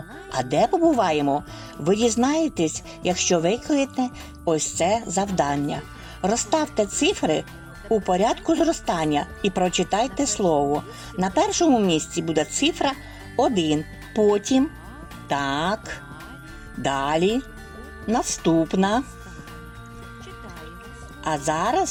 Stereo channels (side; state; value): both; identical; correlation 1.00